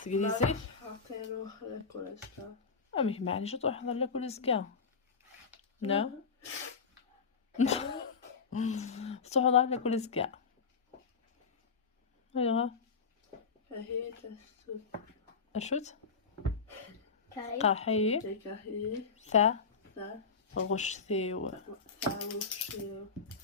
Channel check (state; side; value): quieter; right; 5.2 dB